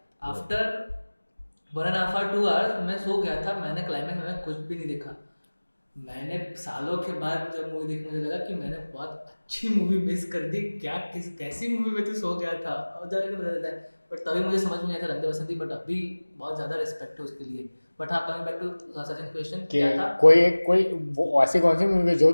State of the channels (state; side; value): inverted; both; correlation -1.00